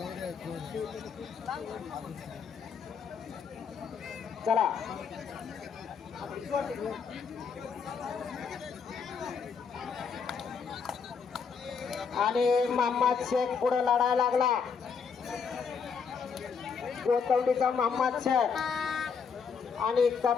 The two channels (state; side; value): quieter; right; 6.1 dB